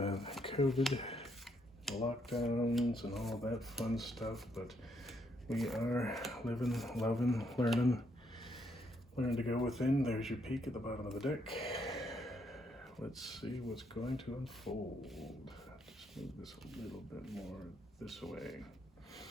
COVID, lockdowns, and all that fun stuff, but we are living, loving, learning. Learn to go within. There's your peek at the bottom of the deck. Let's see what's going to unfold. Just move this a little bit more this way.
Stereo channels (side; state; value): both; normal; correlation 0.74